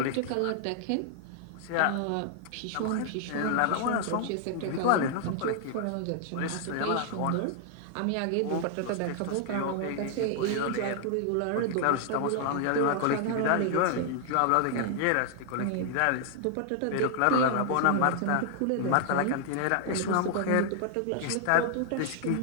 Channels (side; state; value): both; different; correlation 0.00